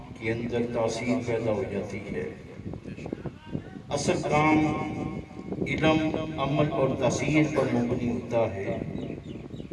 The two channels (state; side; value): identical; both; correlation 1.00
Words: کے اندر تاثیر پیدا ہو جاتی ہے۔ اصل کام علم، عمل اور تاثیر پر مبنی ہوتا ہے۔